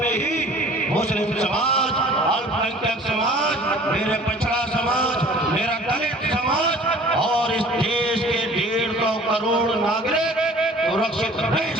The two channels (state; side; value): normal; both; correlation 0.49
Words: ही मुस्लिम समाज, अल्पसंख्यक समाज, मेरे पछड़ा समाज, मेरा दलित समाज और इस देश के 150 करोड़ नागरिक सुरक्षित रह